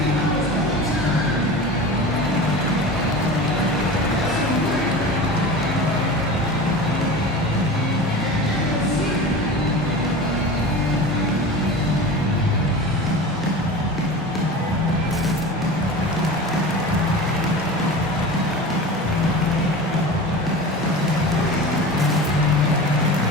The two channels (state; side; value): normal; both; correlation 0.32